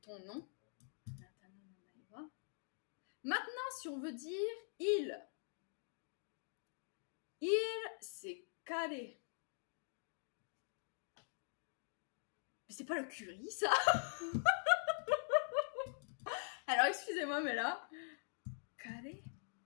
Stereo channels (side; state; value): right; silent; digital silence